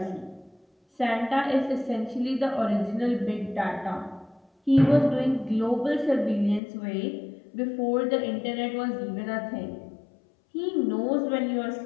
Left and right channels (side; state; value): right; drops out; at 6.6 s